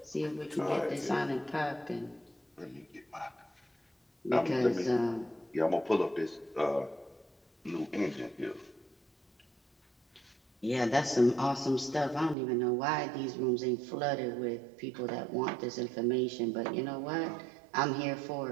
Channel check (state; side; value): drops out; left; at 12.4 s